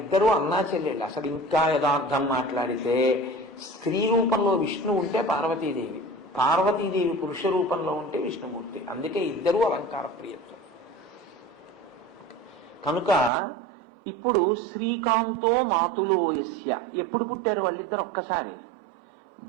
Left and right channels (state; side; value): drops out; left; at 13.3 s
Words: అన్నా చెల్లెళ్ళు. అసలు ఇంకా యథార్థం మాట్లాడితే స్త్రీ రూపంలో విష్ణు ఉంటే పార్వతీదేవి, పార్వతీదేవి పురుష రూపంలో ఉంటే విష్ణుమూర్తి. అందుకే ఇద్దరూ అలంకార ప్రియత్వం. కనుక ఇప్పుడు శ్రీకాంతో మాతులో యస్య, ఎప్పుడు పుట్టారు వాళ్ళిద్దరు? ఒక్కసారి.